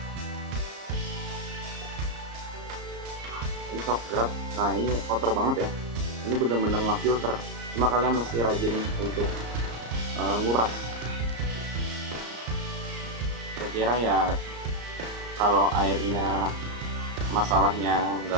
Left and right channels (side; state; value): left; late; 34 ms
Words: Ini shock guard. Nah, ini kotor banget ya. Ini bener-bener nge-filter. Cuma kalian mesti rajin untuk nguras. Kira-kira ya kalau airnya masalahnya